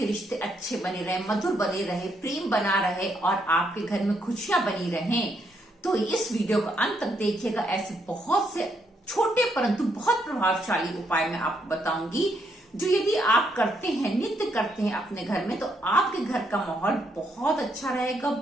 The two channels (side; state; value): both; normal; correlation 0.75